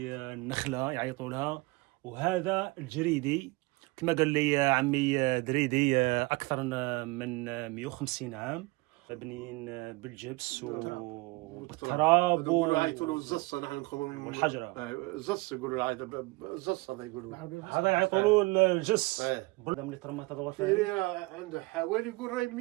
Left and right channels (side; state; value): left; quieter; 24.3 dB